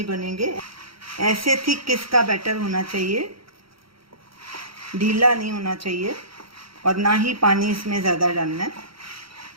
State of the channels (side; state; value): left; late; 0.75 ms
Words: बनेंगे। ऐसे थिक किसका बैटर होना चाहिए, ढीला नहीं होना चाहिए और ना ही पानी इसमें ज़्यादा डालना है।